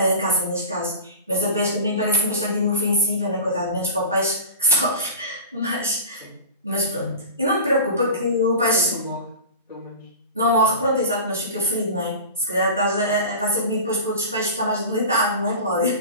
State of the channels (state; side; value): inverted; both; correlation -0.33